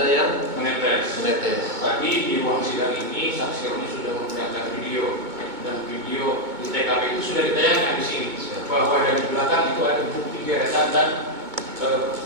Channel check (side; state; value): left; late; 2.2 ms